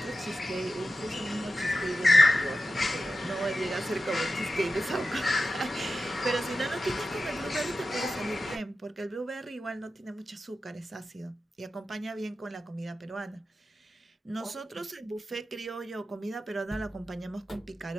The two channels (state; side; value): normal; both; correlation 0.92